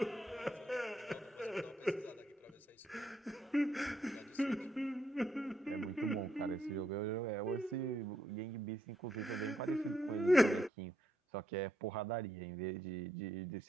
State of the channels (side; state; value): both; normal; correlation 0.76